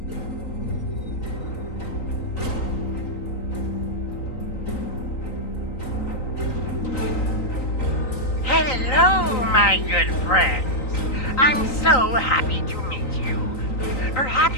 Hello, my good friends. I'm so happy to meet you.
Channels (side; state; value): right; late; 3.9 ms